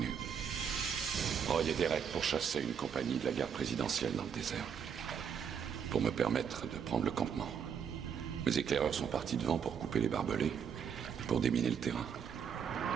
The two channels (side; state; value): left; quieter; 7.4 dB